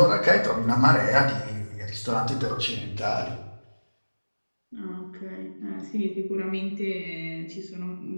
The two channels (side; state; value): both; inverted; correlation -1.00